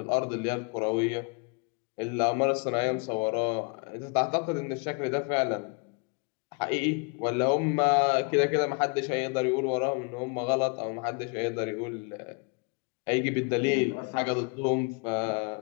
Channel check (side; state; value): right; quieter; 32.7 dB